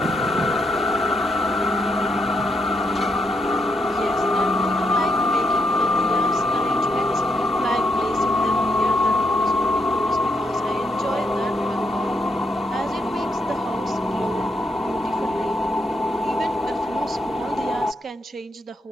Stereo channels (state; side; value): normal; both; correlation 0.78